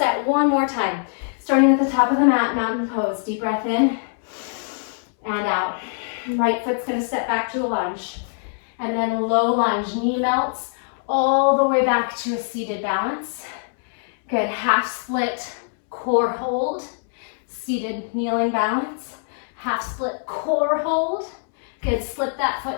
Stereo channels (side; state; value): right; silent; 64 dB below the other